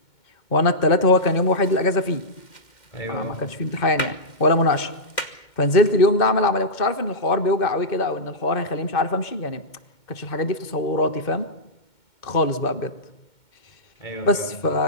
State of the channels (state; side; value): late; right; 2.2 ms